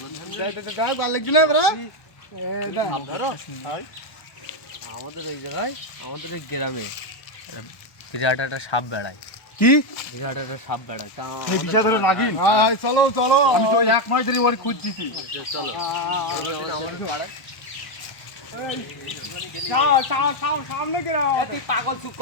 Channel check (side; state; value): right; late; 1.2 ms